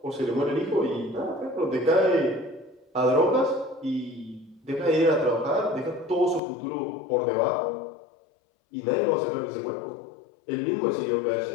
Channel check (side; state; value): right; drops out; at 6.4 s